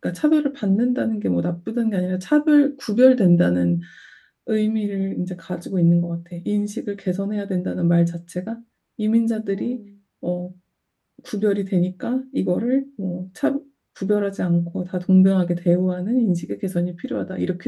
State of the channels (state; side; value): identical; both; correlation 1.00